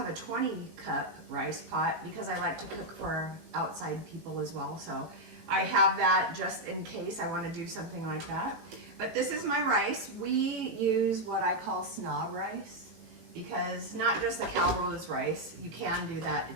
a 20-cup rice pot because I like to cook for outside people as well. So I have that just in case I want to do something like that. But this is my rice. We use what I call snob rice, because not just the Carolyns rice. You can do that.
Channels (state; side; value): late; left; 18 ms